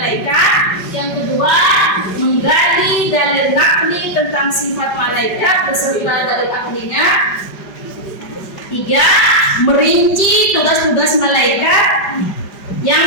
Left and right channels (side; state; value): right; late; 5.1 ms